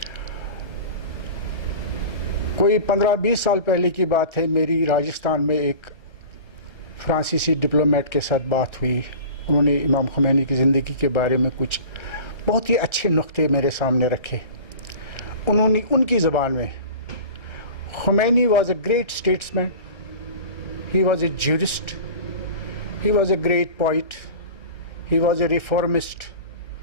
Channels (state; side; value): late; right; 1.3 ms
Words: कोई 15-20 साल पहले की बात है, मेरी राजस्थान में एक फ्रांसीसी डिप्लोमेट के साथ बात हुई। उन्होंने इमाम ख़ुमैनी की ज़िंदगी के बारे में कुछ बहुत ही अच्छे नुक्ते मेरे सामने रखे। उन्होंने उनकी ज़बान में, Khomeini was a great statesman, he was a jurist, he was a great poet, he was a reformist,